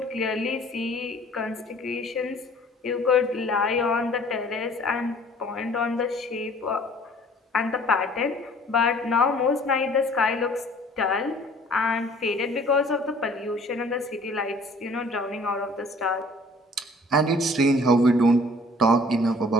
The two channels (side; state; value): both; normal; correlation 0.53